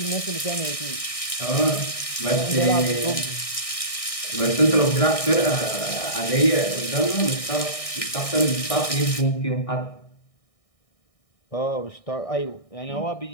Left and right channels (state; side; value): late; right; 1.6 ms